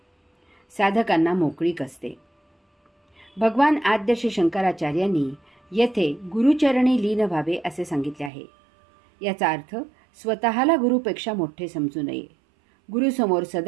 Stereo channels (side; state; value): left; drops out; at 8.3 s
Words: साधकांना मोकळीक असते. भगवान आद्य श्री शंकराचार्यांनी येथे गुरुचरणी लीन व्हावे असे सांगितले आहे. याचा अर्थ स्वतःला गुरुपेक्षा मोठे समजू नये. गुरुसमोर